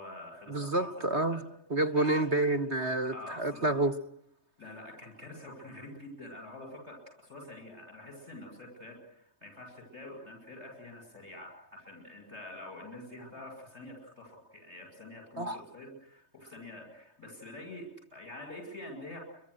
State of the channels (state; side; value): late; left; 3.2 ms